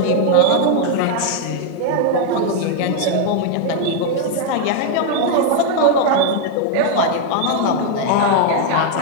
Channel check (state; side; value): different; both; correlation 0.00